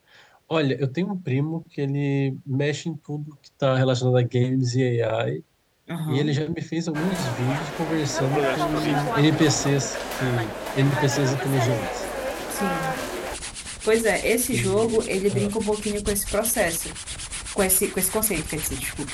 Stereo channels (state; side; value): identical; both; correlation 1.00